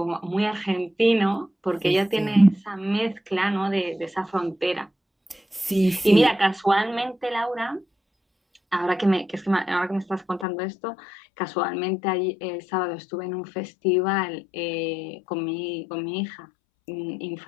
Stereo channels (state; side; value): drops out; right; at 10.5 s